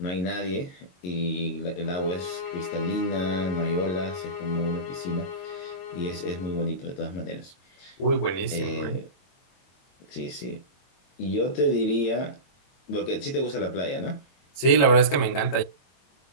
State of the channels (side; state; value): right; late; 22 ms